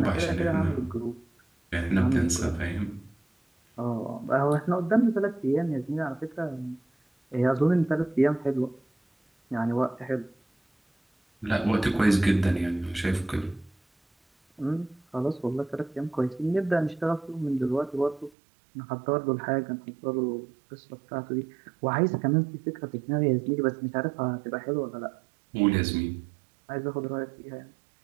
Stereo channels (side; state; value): left; drops out; at 18.3 s